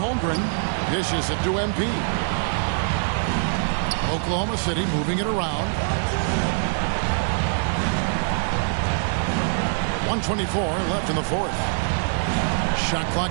Dishes it to MP. Oklahoma City moving it around. 1:24 left in the fourth. Shot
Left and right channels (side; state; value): left; silent; digital silence